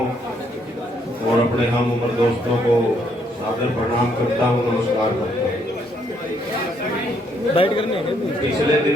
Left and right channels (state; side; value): normal; both; correlation 0.71